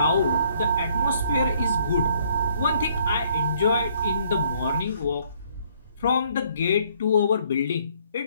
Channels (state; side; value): inverted; both; correlation -0.65